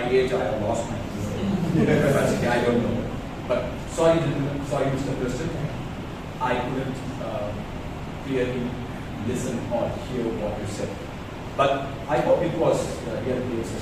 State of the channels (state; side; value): identical; both; correlation 1.00